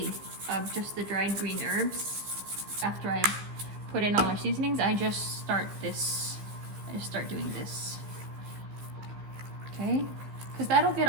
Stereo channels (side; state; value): left; late; 15 ms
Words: of just the dried green herbs. After I put in all our seasonings, I just start doing this, okay? Because that'll get